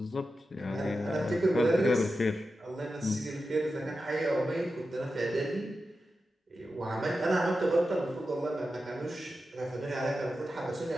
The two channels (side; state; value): both; normal; correlation 0.91